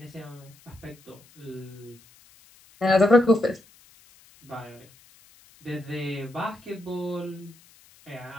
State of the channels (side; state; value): left; noise; hiss, 27 dB below the sound